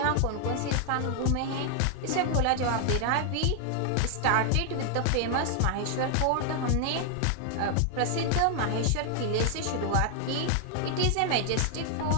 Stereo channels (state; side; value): different; both; correlation 0.00